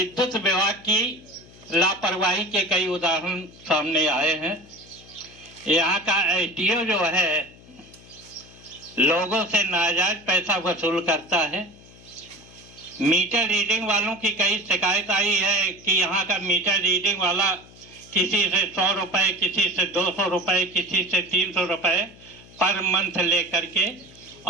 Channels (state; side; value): noise; left; hum, 23 dB below the sound